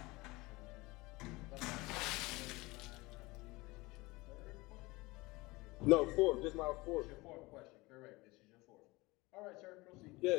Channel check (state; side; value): quieter; right; 22.5 dB